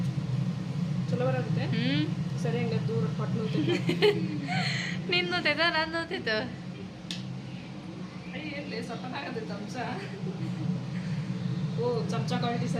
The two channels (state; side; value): identical; both; correlation 1.00